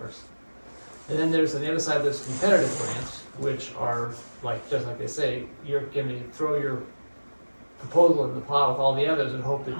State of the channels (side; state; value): both; inverted; correlation -1.00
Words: And then there's, on the other side, there's competitive grants, which are like, just like they say, you're gonna throw your proposal in the plow with all the others and hope that